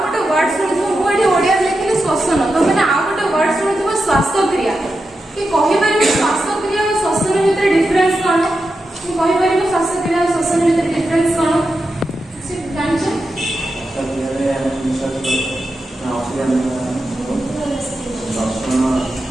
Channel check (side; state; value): both; normal; correlation 0.89